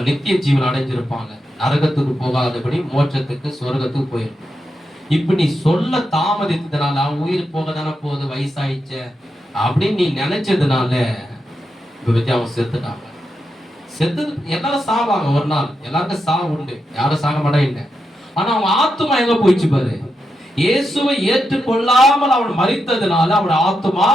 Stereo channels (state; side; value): normal; both; correlation 0.86